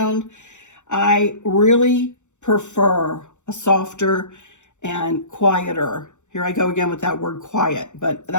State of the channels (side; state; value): right; late; 0.84 ms